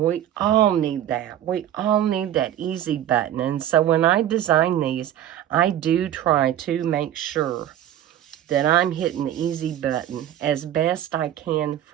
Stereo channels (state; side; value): quieter; left; 11.4 dB